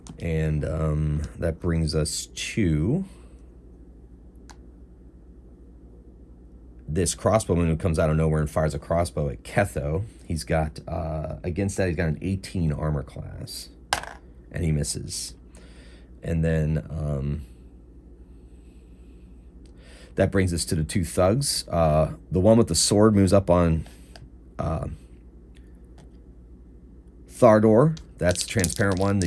And that brings us to this crossbowman who comes out of nowhere and fires a crossbow at Ketho. He's got, against that, he's got an 18 armor class. And he misses. And then that brings us to the 2 thugs. The one with the sword moves up on Thardor. That's the transparent one.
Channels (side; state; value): both; identical; correlation 1.00